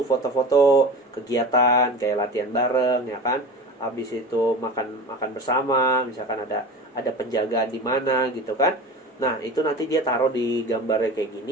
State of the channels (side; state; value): both; normal; correlation 0.32